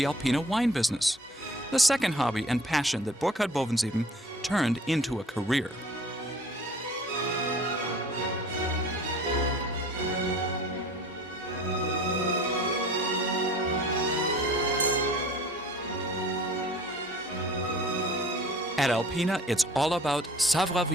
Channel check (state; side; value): normal; both; correlation 0.47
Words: Alpina wine business, the second hobby and passion that Burkhard Bovensieben turned into a career. At Alpina, it's all about